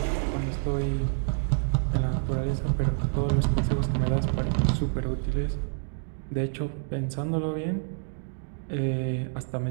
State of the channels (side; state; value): left; silent; digital silence